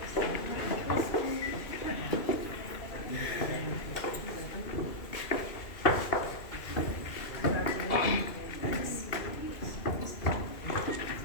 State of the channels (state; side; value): late; right; 2.8 ms